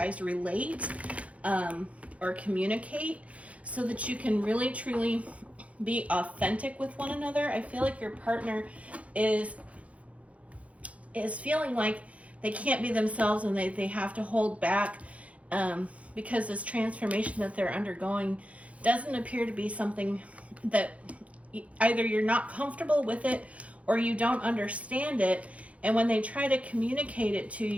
relate or communicate so that you can really truly be authentic with one another. I feel like your partner is feeling like they can't be themselves and they have to hold back because this transformation that they're undergoing doesn't appear to be something that either you're not comfortable with it or you don't understand it. And when they try to communicate it to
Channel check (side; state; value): left; late; 0.065 ms